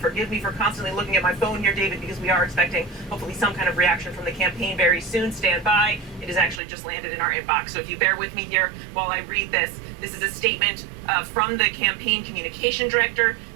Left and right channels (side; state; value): left; drops out; at 6.6 s